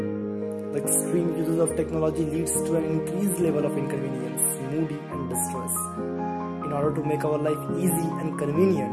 The extreme uses of technology leads to an increased level of inconvenience, moody and distress. In order to make our life easy and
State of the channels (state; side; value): identical; both; correlation 1.00